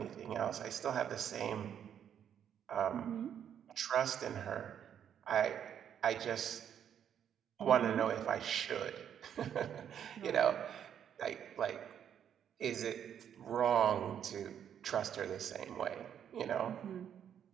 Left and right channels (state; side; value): quieter; left; 9.0 dB